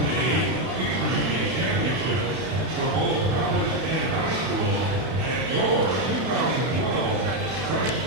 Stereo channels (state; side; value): late; left; 32 ms